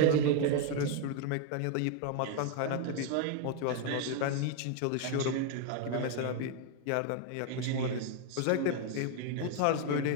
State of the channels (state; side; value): different; both; correlation 0.01